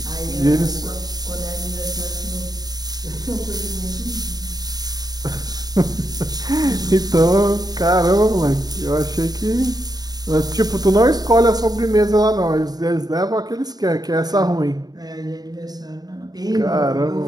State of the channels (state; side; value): late; left; 0.19 ms